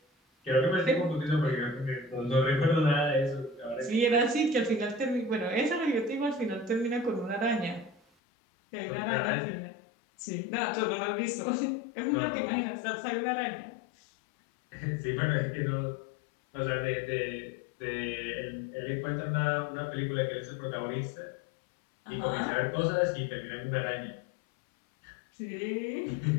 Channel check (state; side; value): drops out; right; at 8.0 s